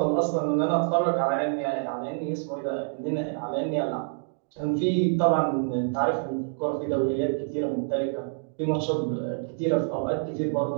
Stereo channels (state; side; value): silent; left; digital silence